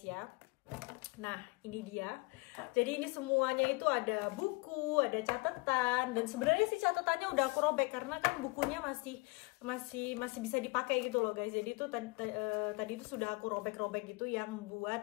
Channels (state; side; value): quieter; right; 26.1 dB